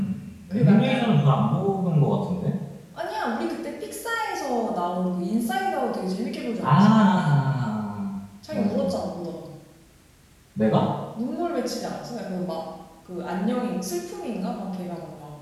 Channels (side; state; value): both; identical; correlation 1.00